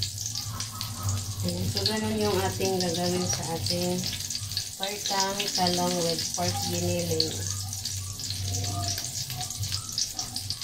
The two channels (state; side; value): identical; both; correlation 1.00